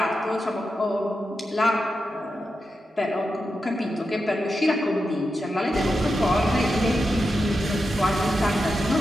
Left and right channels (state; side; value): normal; both; correlation 0.89